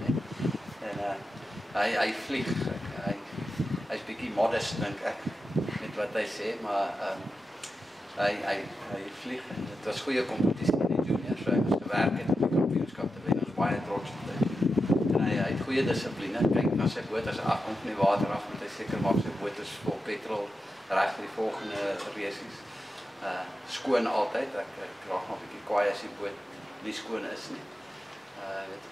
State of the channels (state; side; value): normal; both; correlation 0.90